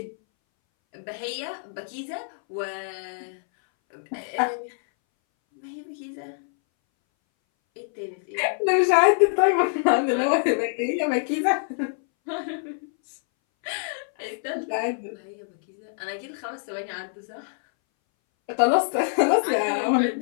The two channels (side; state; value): right; silent; 60 dB below the other